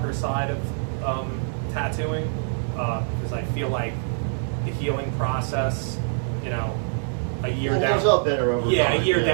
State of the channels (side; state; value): left; silent; digital silence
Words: side of tattooing, because I feel like the healing process, a year down, up better over time. A year